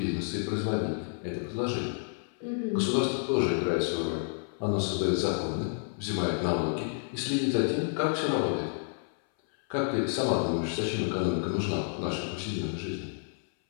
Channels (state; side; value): silent; right; 57 dB below the other